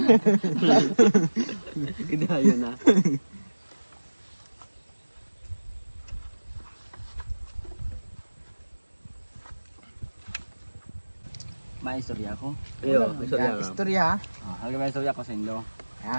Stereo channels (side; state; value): both; inverted; correlation -1.00